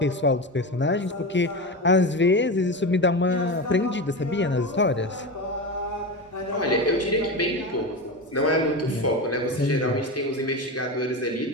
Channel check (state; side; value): normal; both; correlation 0.21